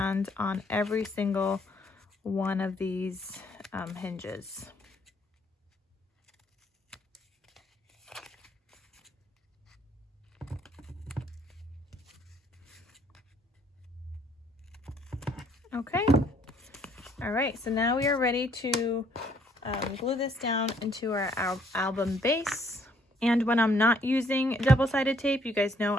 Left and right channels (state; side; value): normal; both; correlation 0.65